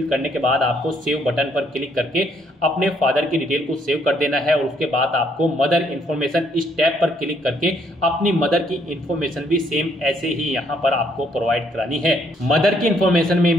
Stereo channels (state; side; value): normal; both; correlation 0.69